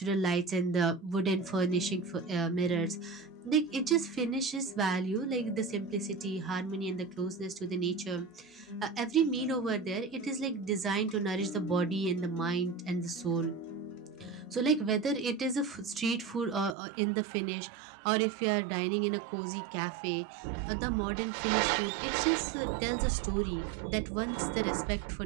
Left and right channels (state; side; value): drops out; left; at 16.8 s